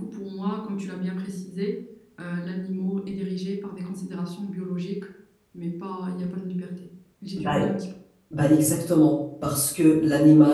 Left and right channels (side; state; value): both; identical; correlation 1.00